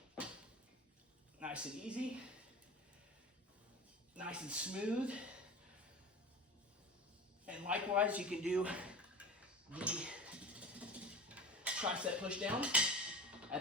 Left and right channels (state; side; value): normal; both; correlation 0.33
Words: Nice and easy. Nice and smooth. And likewise, you can do the tricep push down